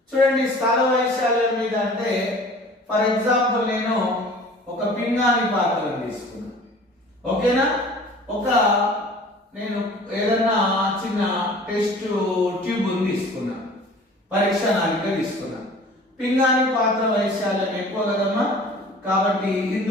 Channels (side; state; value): both; normal; correlation 0.46